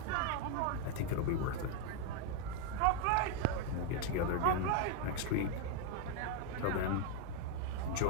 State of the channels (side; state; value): both; different; correlation 0.01